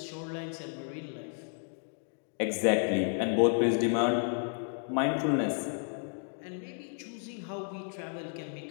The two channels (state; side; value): silent; right; 56 dB below the other